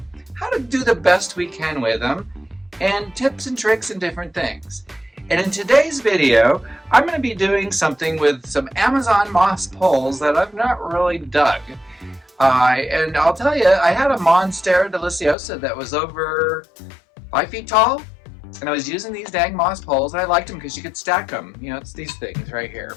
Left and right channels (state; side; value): drops out; right; at 15.4 s